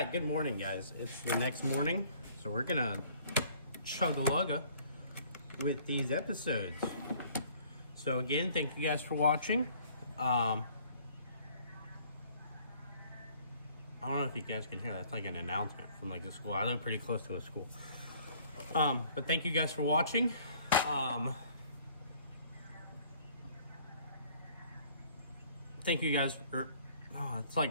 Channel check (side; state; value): both; inverted; correlation -0.58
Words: good morning, guys. It's the next morning, so we're gonna chug-a-lugga with these episodes. So again, thank you guys for watching. I don't know if you guys can hear that. It's like an announcement from like the school. I live pretty close to a school. But thank you guys for watching. Thank you guys for, it's